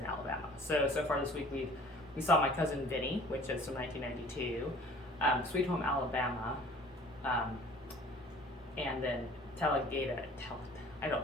Alabama. So far this week we saw My Cousin Vinny, which is from 1992, Sweet Home Alabama, and then Talladega.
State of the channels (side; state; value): both; normal; correlation 0.49